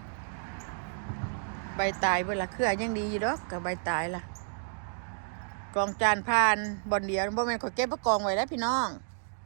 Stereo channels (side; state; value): left; silent; digital silence